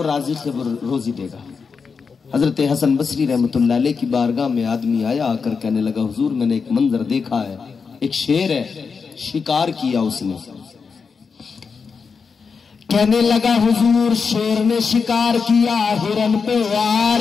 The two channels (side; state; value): right; quieter; 5.4 dB